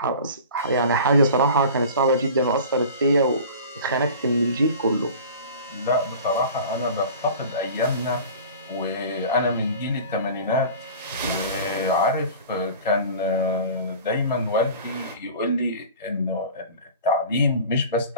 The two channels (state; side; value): inverted; both; correlation -0.40